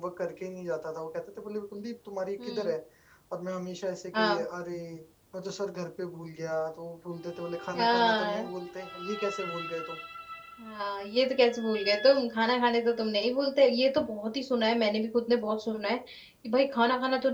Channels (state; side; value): identical; both; correlation 1.00